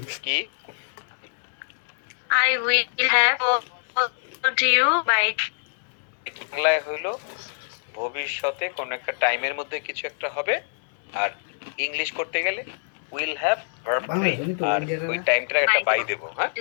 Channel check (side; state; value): right; silent; digital silence